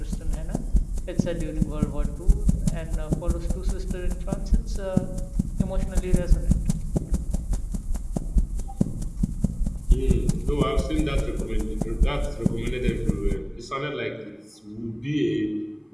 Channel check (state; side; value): identical; both; correlation 1.00